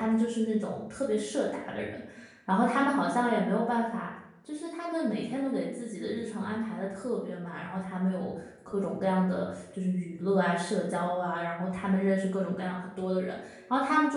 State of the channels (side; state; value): both; identical; correlation 1.00